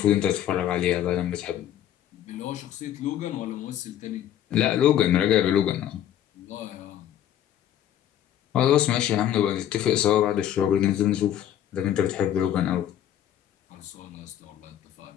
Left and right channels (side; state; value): right; quieter; 11.1 dB